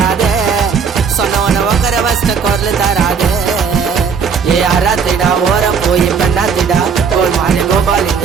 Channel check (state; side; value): quieter; left; 6.1 dB